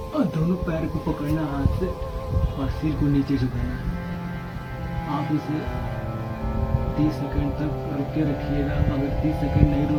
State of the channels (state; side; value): identical; both; correlation 1.00